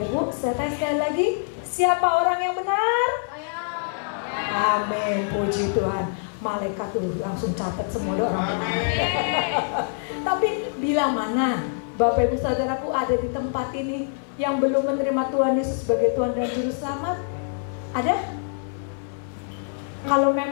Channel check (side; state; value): right; silent; 58 dB below the other